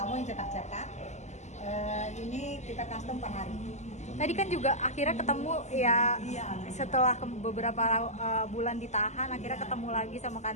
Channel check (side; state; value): right; late; 0.33 ms